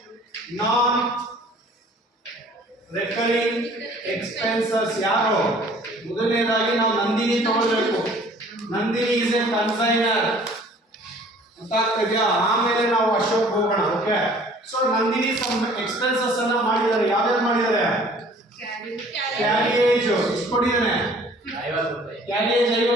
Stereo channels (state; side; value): normal; both; correlation 0.52